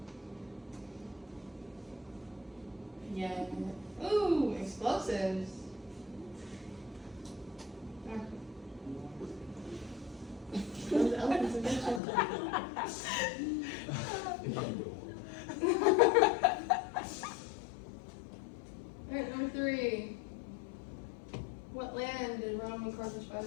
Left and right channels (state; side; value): drops out; right; at 12.0 s